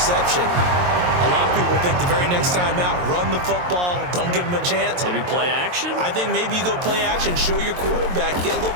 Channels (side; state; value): left; late; 22 ms